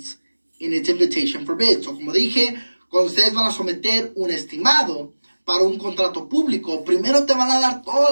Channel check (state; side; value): inverted; both; correlation -1.00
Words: in its invitation for bids. So, como dije, cuando ustedes van a someter un estimado para un contrato público, primero te van a dar toda